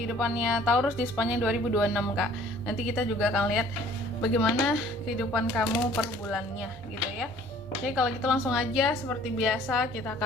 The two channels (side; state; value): both; normal; correlation 0.54